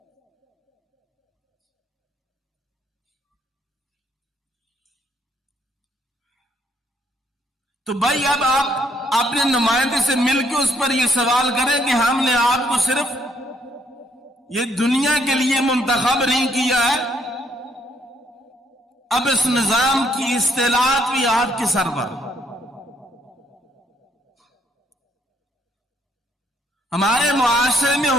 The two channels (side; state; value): both; normal; correlation 0.70